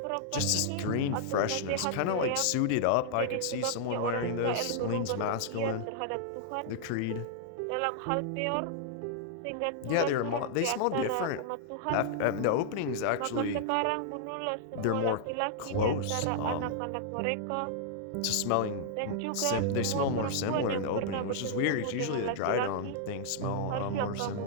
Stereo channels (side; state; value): both; different; correlation -0.01